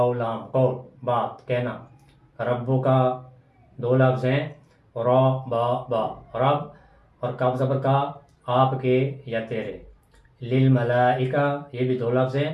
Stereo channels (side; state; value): both; identical; correlation 1.00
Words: لام قول بات کہنا، ربو کا دو لفظ ہیں را با با رب اور کاف زبر کا آپ کے یا تیرے. للملائکہ یہ بھی دو لفظ ہیں،